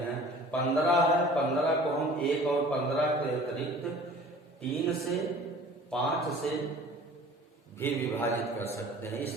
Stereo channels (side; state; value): both; normal; correlation 0.46